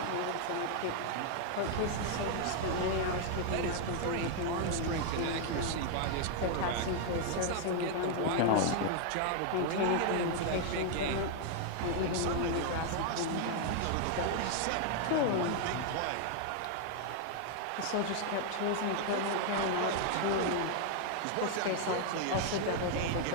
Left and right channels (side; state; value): both; different; correlation 0.00